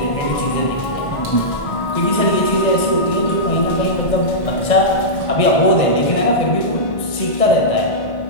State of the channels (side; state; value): right; late; 1.9 ms